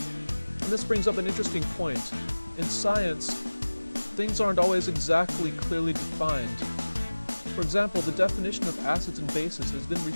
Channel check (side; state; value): both; inverted; correlation -1.00